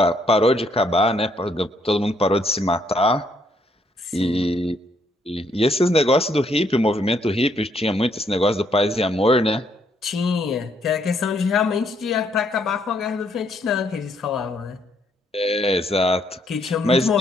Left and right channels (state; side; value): normal; both; correlation 0.71